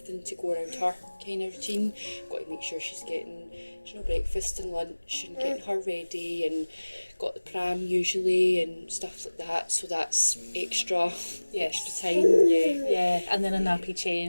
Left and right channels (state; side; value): inverted; both; correlation -1.00